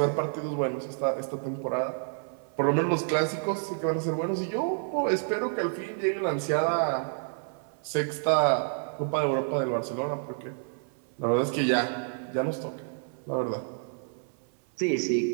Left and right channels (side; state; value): left; silent; 56 dB below the other